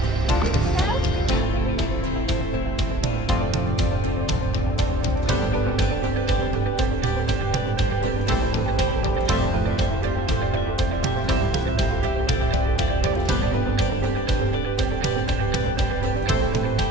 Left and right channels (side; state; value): both; normal; correlation 0.48